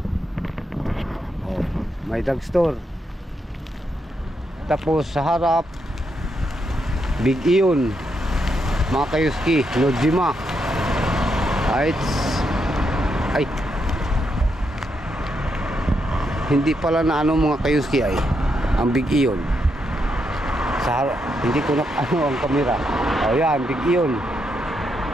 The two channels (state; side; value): normal; both; correlation 0.81